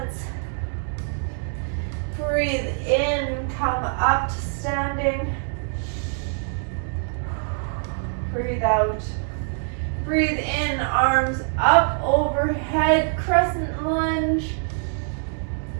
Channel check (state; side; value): silent; left; 62 dB below the other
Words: Breathe in, come up to standing. Breathe out. Breathe in, arms up overhead, crescent lunge.